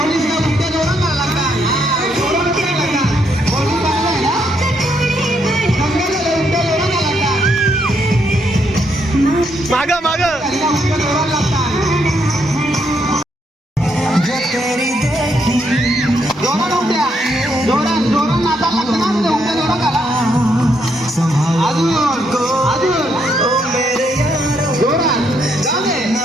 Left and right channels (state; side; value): normal; both; correlation 0.75